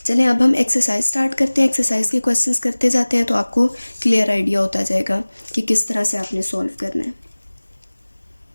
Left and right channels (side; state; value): both; inverted; correlation -1.00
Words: चलें अब हम एक्सरसाइज स्टार्ट करते हैं। एक्सरसाइज के क्वेश्चंस करते जाते हैं तो आपको क्लियर आइडिया होता जाएगा कि किस तरह से आपने सॉल्व करना है।